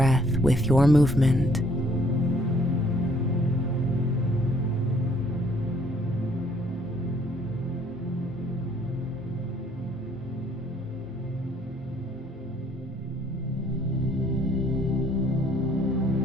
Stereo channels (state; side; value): normal; both; correlation 0.64